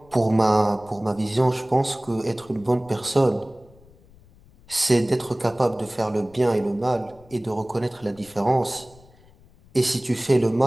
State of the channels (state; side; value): noise; left; rumble, 26 dB below the sound